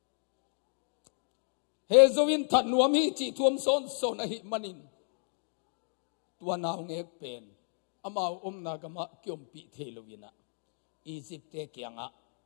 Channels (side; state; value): right; silent; digital silence